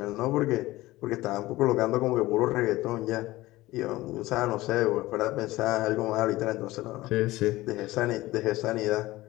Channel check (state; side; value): quieter; right; 18.2 dB